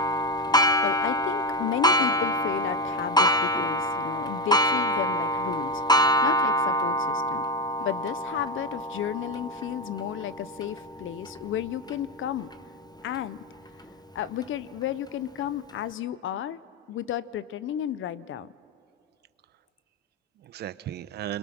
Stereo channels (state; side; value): normal; both; correlation 0.11